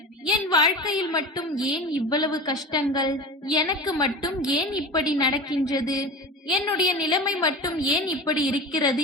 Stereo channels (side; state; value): both; normal; correlation 0.31